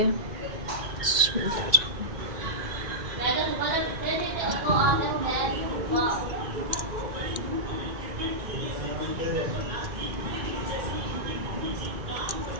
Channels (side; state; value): left; late; 1.9 ms